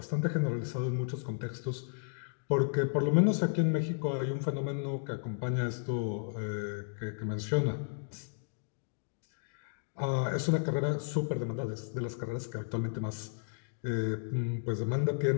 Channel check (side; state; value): right; silent; digital silence